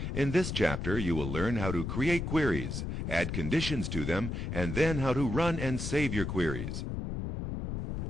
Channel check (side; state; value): left; noise; rumble, 4 dB below the sound